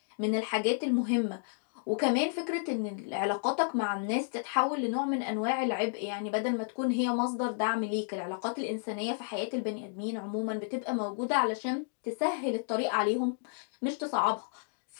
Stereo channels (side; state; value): right; silent; digital silence